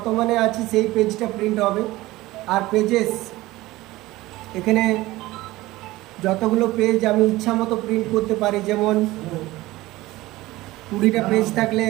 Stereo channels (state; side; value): quieter; left; 18.4 dB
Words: আছি সেই পেজটা প্রিন্ট হবে। আর পেজেস, এখানে যতগুলো পেজ আমি ইচ্ছা মতো প্রিন্ট করতে পারি। যেমন 20টা পেজ থাকলে